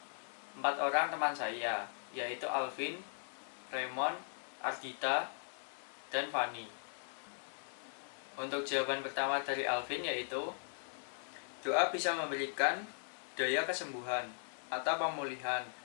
4 orang teman saya, yaitu Alvin, Raymond, Ardita, dan Fanny. Untuk jawaban pertama dari Alvin yaitu, doa bisa memberikan daya kesembuhan atau pemulihan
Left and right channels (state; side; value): silent; right; digital silence